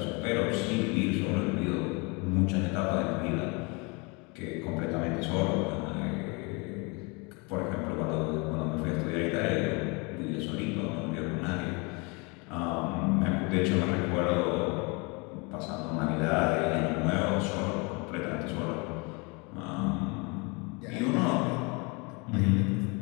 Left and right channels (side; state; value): right; quieter; 29.7 dB